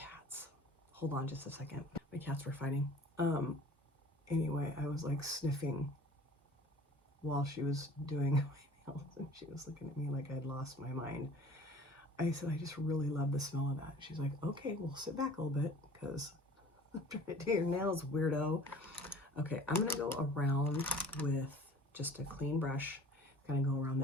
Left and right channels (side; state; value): both; normal; correlation 0.48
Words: Hold on just a second. My cats were fighting. Anyway, I was like sniffing while she was doing my nails, and she was looking at me like I'd lost my mind. I said, I just really love the smell of that. She's like, okay, well, sit back a little bit because I'm trying to do your nails, weirdo. Okay, I'm gonna go around with just a clean brush, kind of go around